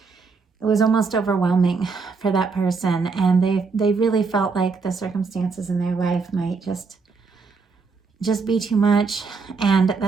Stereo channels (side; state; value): left; quieter; 4.7 dB